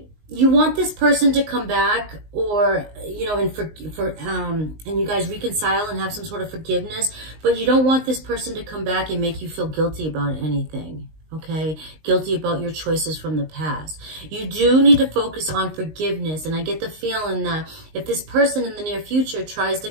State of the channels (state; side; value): late; left; 19 ms